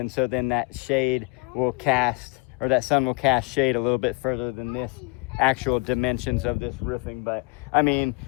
so then that shade will cast, or that sun will cast shade a little bit further than this actual dimensions of this roofing. But I mean,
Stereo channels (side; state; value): right; quieter; 29.8 dB